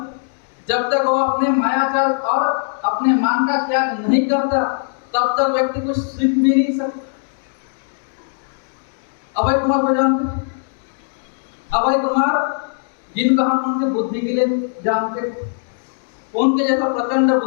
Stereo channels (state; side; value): silent; right; digital silence